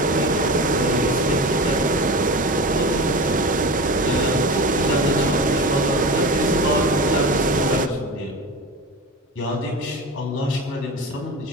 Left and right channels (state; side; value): normal; both; correlation 0.29